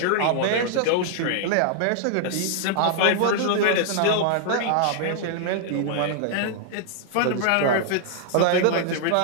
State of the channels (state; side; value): different; both; correlation -0.01